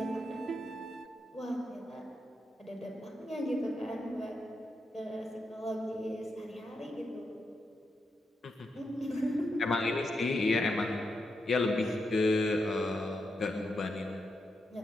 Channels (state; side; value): normal; both; correlation 0.85